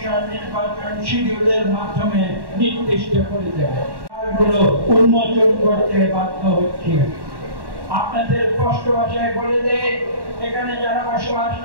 নির্বাচন শিডিউলের মাধ্যমে নির্দিষ্ট করে দেবে। উন্মোচন করতে বাধ্য হচ্ছে। আপনাদের স্পষ্ট ভাষায় বলে দেয়, এখানে যারা বসবাস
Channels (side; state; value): left; late; 1.1 ms